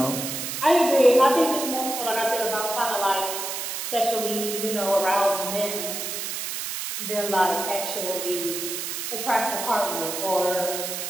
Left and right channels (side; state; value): right; noise; hiss, 4 dB below the sound